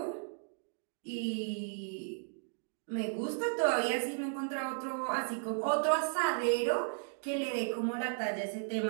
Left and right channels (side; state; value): left; silent; digital silence